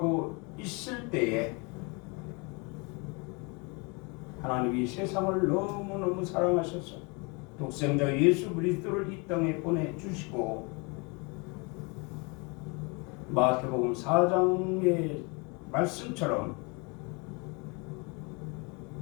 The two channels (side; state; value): right; quieter; 30.7 dB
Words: 있을 때에 하나님이 세상을 너무너무 사랑하셔서 독생자 예수 그리스도를 이 땅에 보내주시고 마태복음 4장의 말씀처럼